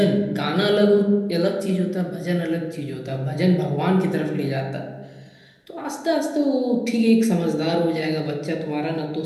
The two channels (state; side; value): identical; both; correlation 1.00